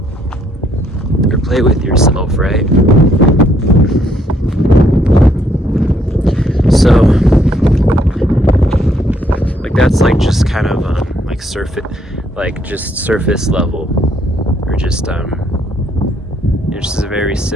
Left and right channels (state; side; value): normal; both; correlation 0.69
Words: or play with yourself, right? So like that's like just kind of like surface level, or just it's just a very